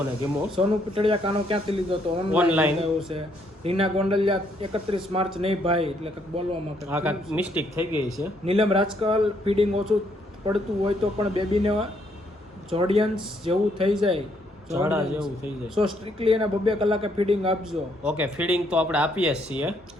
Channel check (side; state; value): both; normal; correlation 0.71